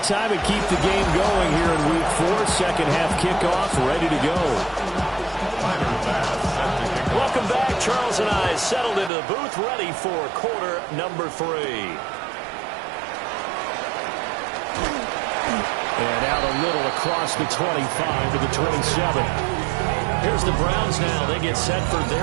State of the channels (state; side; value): drops out; left; at 9.1 s